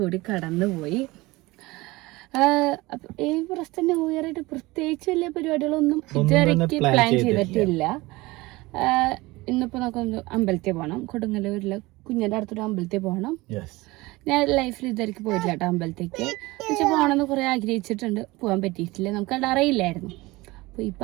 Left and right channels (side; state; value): left; quieter; 21.2 dB